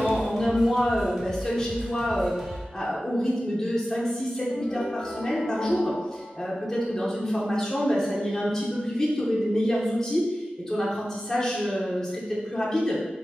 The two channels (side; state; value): both; normal; correlation 0.95